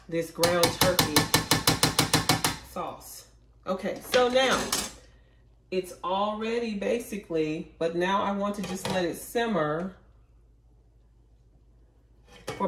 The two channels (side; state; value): both; identical; correlation 1.00